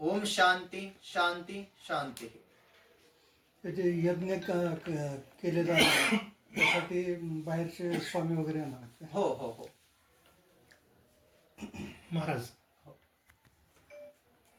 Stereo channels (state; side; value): identical; both; correlation 1.00